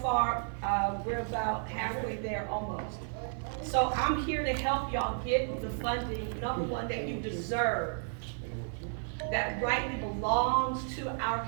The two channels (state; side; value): silent; left; 56 dB below the other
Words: we're about halfway there almost. So I'm here to help y'all get the funding, number one, that you deserve, that rightly belongs to our